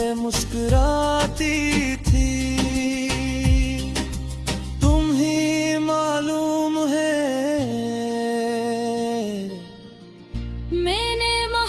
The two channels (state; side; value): identical; both; correlation 1.00